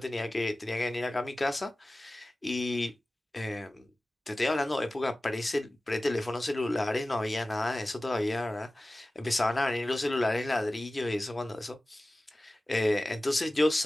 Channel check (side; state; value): both; normal; correlation 0.97